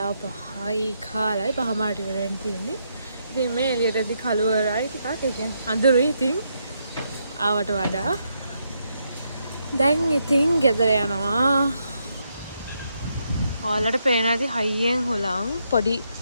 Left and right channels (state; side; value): inverted; both; correlation -0.79